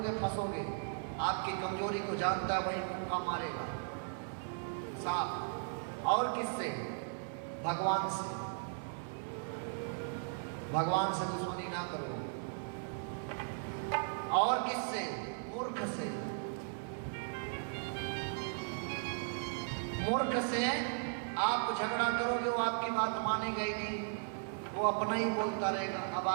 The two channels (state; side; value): silent; left; 53 dB below the other